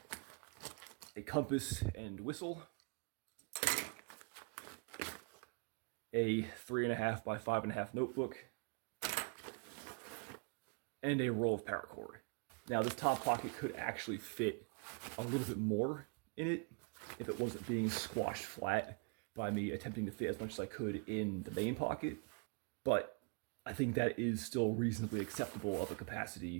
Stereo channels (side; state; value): left; quieter; 35.5 dB